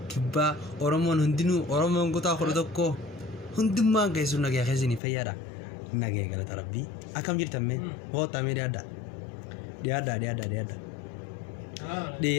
kibba oromon hundinu oromon gota khordokko hundumma gaisu nage khazini fayara nage galata rabbi akam jirta me hota me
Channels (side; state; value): right; drops out; at 5.0 s